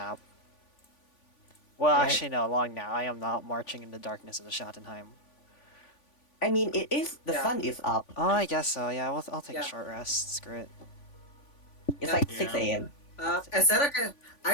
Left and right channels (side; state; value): right; late; 3.5 ms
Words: Well, Right. actually, no, long nap. I am not marching in the darkness of the Schattenheim. I mean, it is, the Yeah. sun is up. Oh, I guess so. Yeah, I'll take Yeah. a short rest. Screw it. It's Yeah. like Yeah. 6 a.m. Asera can.